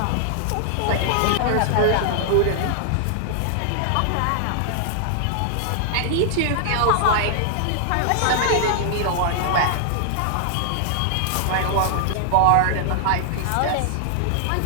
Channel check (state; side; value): different; both; correlation 0.00